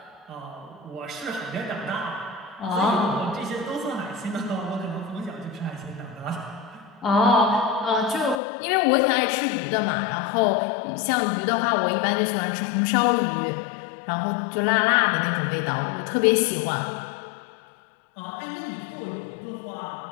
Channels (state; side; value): drops out; right; at 8.4 s